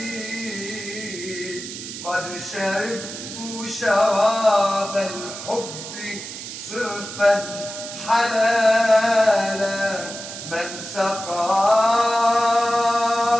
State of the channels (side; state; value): right; noise; hiss, 10 dB below the sound